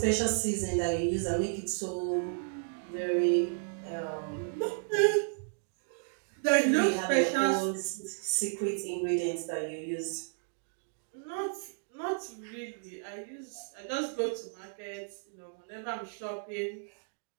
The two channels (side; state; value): left; silent; digital silence